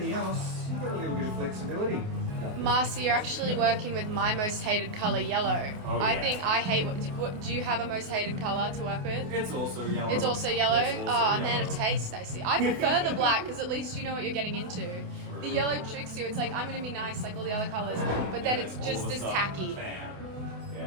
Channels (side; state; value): left; late; 28 ms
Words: else, you get a little bit of flexibility. Marcy, you're actually working with my most hated colour, yellow. Oh, yeah. I think I hate. Do you have a most hated colour to work with? It's also yellow. It's also yellow. It's also A man of yellow. taste, I see. I prefer the black because at least you know what you're getting into. The yellow tricks you. It's like I'm going to be nice like all the other colours, but then it's just All of a as sudden, tacky. bam.